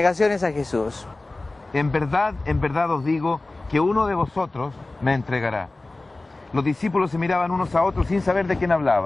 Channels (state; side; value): quieter; right; 3.0 dB